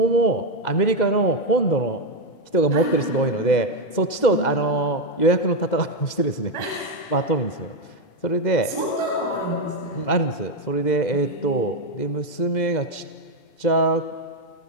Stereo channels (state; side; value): late; right; 2.0 ms